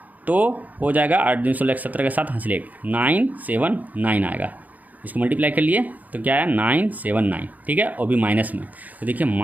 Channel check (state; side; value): late; left; 0.079 ms